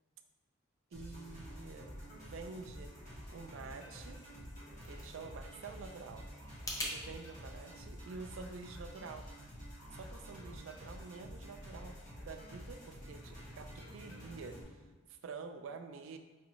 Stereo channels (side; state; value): both; normal; correlation 0.34